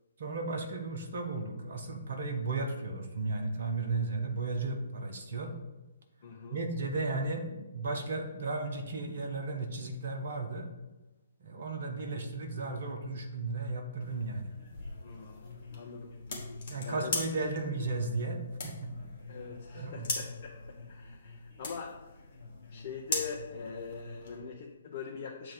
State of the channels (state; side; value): inverted; both; correlation -0.51